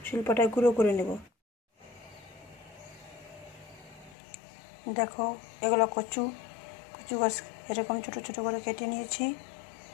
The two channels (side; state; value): right; drops out; at 4.2 s